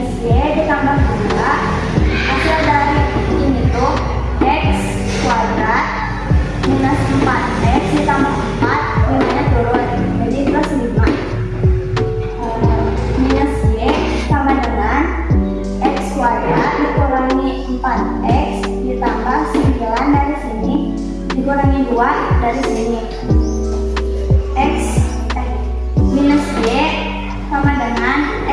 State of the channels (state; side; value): identical; both; correlation 1.00